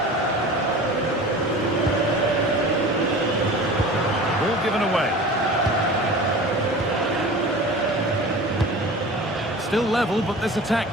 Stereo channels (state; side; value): normal; both; correlation 0.38